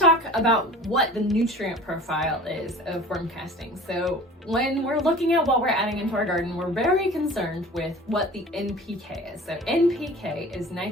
about what the nutrient profile is of worm castings. So when we're looking at what we're adding into our garden, we're very concerned with what the NPK is. So NPK is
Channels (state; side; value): normal; both; correlation 0.42